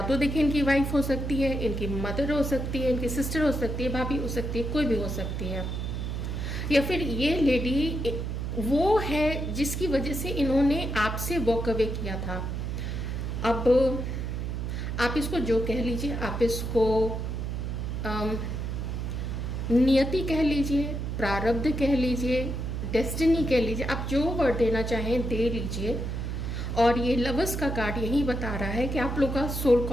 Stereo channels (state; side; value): noise; right; hum, 3 dB below the sound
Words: तो देखिए इनकी वाइफ हो सकती है, इनकी मदर हो सकती है, इनकी सिस्टर हो सकती है, भाभी हो सकती है, कोई भी हो सकती है, या फिर ये लेडी वो है जिसकी वजह से इन्होंने आपसे वॉक अवे किया था। अब आप इसको जो कह लीजिए, आप इसको नियति कह लीजिए, प्रारब्ध कह लीजिए, डेस्टिनी कह लीजिए, आप जो वर्ड देना चाहें दे लीजिए। और ये लवर्स का कार्ड यही बता रहा है कि आप लोग का सोल